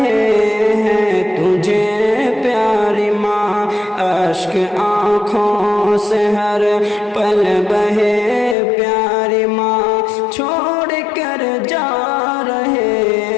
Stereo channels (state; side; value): drops out; right; at 8.6 s